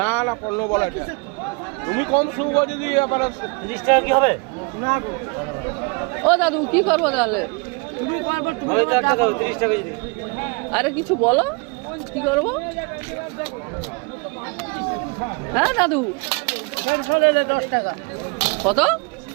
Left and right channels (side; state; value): left; quieter; 31.1 dB